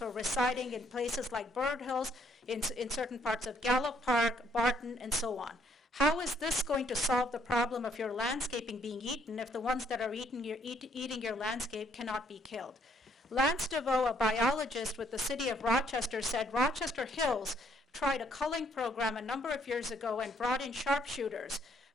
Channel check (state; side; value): normal; both; correlation 0.67